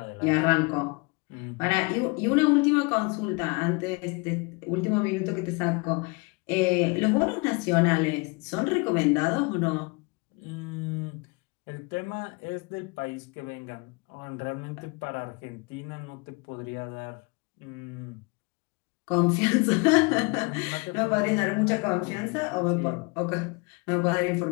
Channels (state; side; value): quieter; right; 29.0 dB